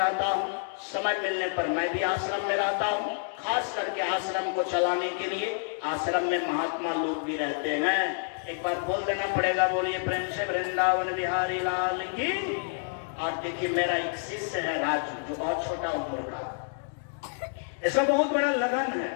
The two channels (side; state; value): right; silent; digital silence